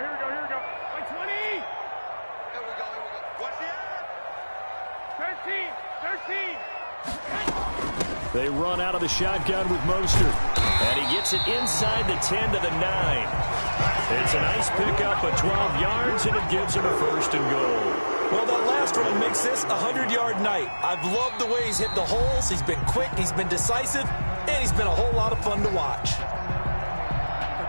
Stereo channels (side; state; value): both; inverted; correlation -1.00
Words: They run out of the shotgun with Mostert. And he gets it inside the 10 to the 9. It's a nice pickup of 12 yards, and it gives him a 1st and goal. Well, that last run makes this a 100-yard night. I've loved the way he's hit the holes. He's been quick, he's been decisive, and he's been a whole lot of fun to watch.